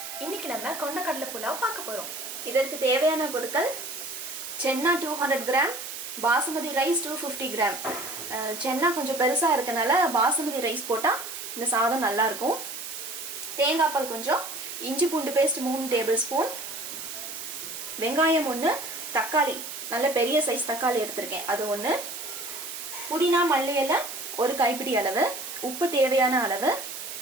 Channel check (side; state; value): right; noise; hiss, 8 dB below the sound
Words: இன்னைக்கு நம்ம கொண்டக்கடலை புலாவ் பார்க்க போறோம். இதற்கு தேவையான பொருட்கள் சென்னா 200 கிராம், பாசுமதி ரைஸ் 250 கிராம். சென்னா கொஞ்சம் பெருசா இருக்கனால பாசுமதி ரைஸ் போட்டா இந்த சாதம் நல்லா இருக்கும். தேங்காய் பால் கொஞ்சம், இஞ்சி பூண்டு பேஸ்ட் 3 டேபிள் ஸ்பூன், வெங்காயம் 1, தக்காளி நல்ல பெரிய சைஸ் தக்காளி எடுத்திருக்கேன் அது 1, புதினா மல்லி இலை 1 கைப்பிடி அளவு, உப்பு தேவையான அளவு,